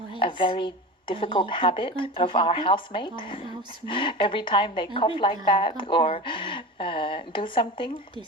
very difficult habit of our housemate. Every time they cough like that or do something,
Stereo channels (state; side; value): normal; both; correlation 0.29